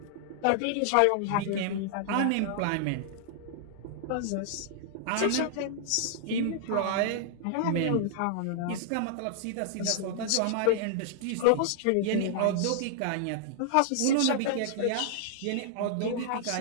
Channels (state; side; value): different; both; correlation -0.01